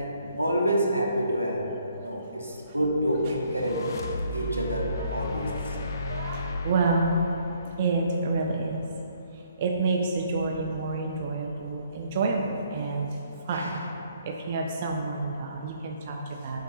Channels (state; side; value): inverted; both; correlation -0.66